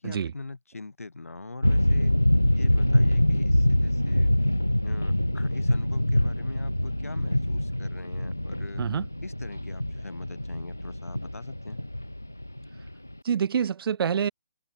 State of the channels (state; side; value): inverted; both; correlation -0.95